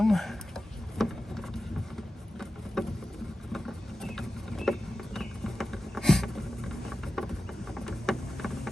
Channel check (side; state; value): both; normal; correlation 0.93